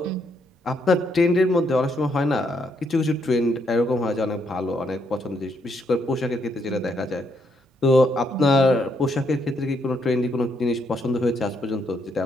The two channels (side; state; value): both; normal; correlation 0.74